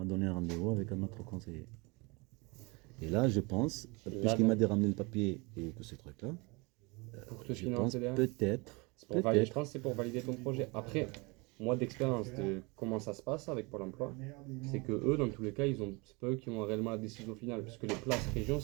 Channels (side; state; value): left; quieter; 27.7 dB